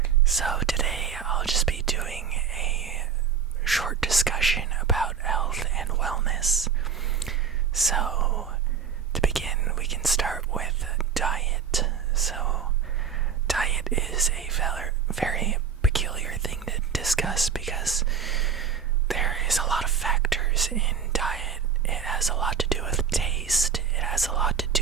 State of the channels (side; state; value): left; quieter; 6.9 dB